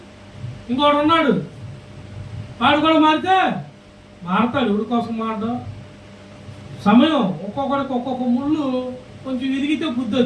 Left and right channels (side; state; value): both; identical; correlation 1.00